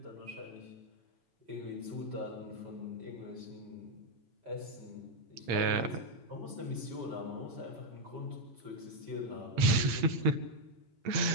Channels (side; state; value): left; late; 7.2 ms